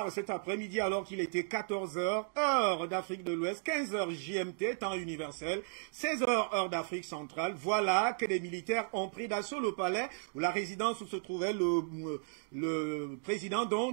cet après-midi, alors qu'il était 14h, heure d'Afrique de l'Ouest, 15h GMT, temps universel, 16h, heure d'Afrique centrale. Voilà que des militaires ont pris d'assaut le palais ou la résidence où se trouvait le président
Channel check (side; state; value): left; silent; digital silence